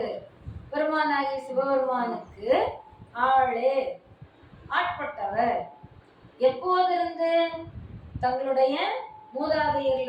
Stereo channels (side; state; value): both; identical; correlation 1.00